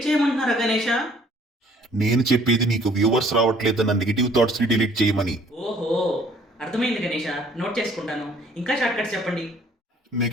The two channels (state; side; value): normal; both; correlation 0.59